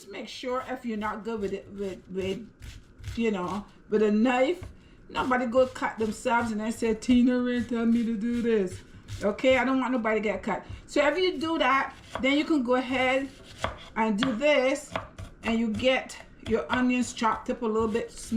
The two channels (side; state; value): both; identical; correlation 1.00